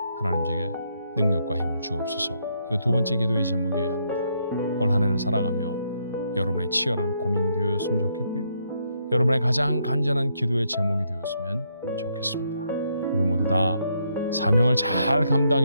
하나님 제게 능력과 힘을 주옵소서. 이거 두 번째 기도의 제목이어야 합니다. 올 한 해를 살아가며 여러분의 치열한 고민이 되었으면 좋겠고요. 여러분의 가장 간절한 기도의 제목이 되었으면 좋겠습니다. 우리 모두 다 사명을 잘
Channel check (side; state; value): both; inverted; correlation -0.76